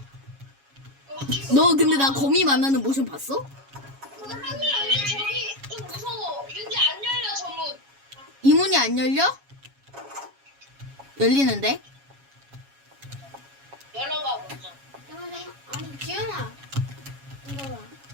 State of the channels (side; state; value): left; late; 7.2 ms